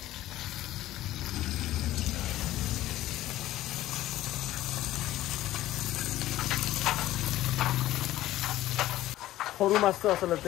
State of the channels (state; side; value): quieter; right; 14.9 dB